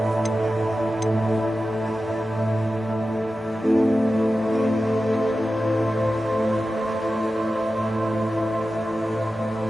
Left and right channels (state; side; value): normal; both; correlation 0.93